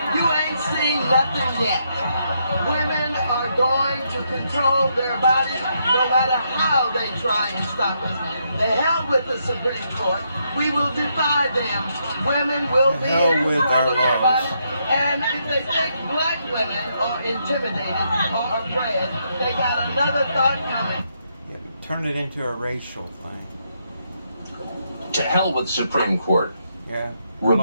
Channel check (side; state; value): both; inverted; correlation -0.77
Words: You ain't seen nothing yet. Women are going to control their bodies no matter how they try and stop us. The hell with the Supreme Court. We will defy them. Women will be in control of their bodies. And if they think black women are intimidated or afraid, they got another thought coming. Yeah, turn it into a racial thing. To hell with Supreme Court. Yeah.